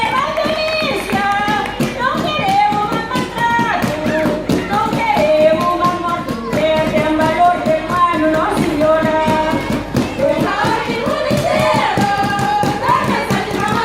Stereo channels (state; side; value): identical; both; correlation 1.00